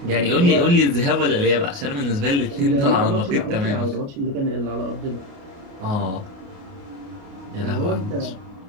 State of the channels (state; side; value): late; left; 29 ms